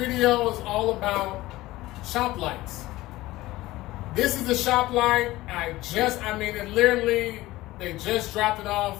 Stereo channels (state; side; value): quieter; right; 17.8 dB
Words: is all about shop lights. This is the shop light. They just dropped it off